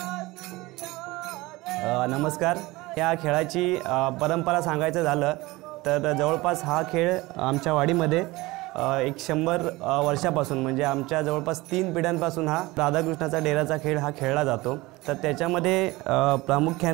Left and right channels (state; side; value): quieter; left; 21.0 dB